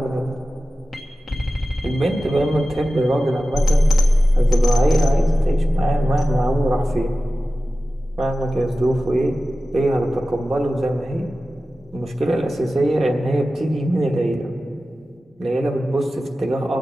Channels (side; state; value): both; normal; correlation 0.95